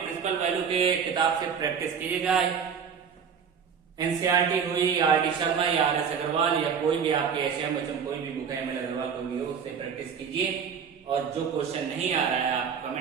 प्रिंसिपल वैल्यू के किताब से प्रैक्टिस कीजिएगा। एनसीईआरटी हुई, आर डी शर्मा या आर एस अग्रवाल या कोई भी आपके एचएम कोई भी बुक है, एम एल अग्रवाल कोई भी हो, उससे प्रैक्टिस कीजिए। और जो क्वेश्चन नहीं आ रहा है आप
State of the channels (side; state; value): left; quieter; 6.8 dB